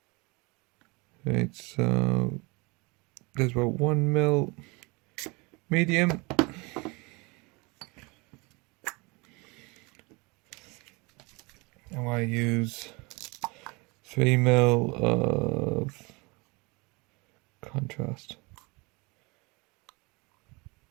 Right, so there's about 1 ml medium. And I use 3 ml of contrast.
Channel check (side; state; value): left; quieter; 27.2 dB